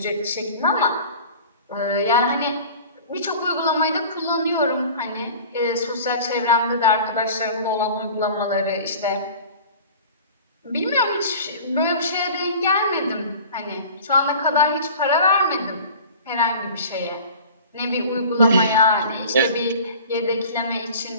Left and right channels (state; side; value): inverted; both; correlation -0.41